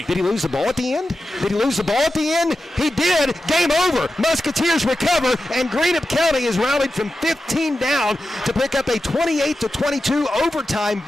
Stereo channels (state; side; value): normal; both; correlation 0.92